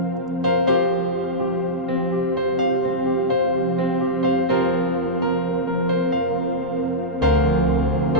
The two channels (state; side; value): normal; both; correlation -0.10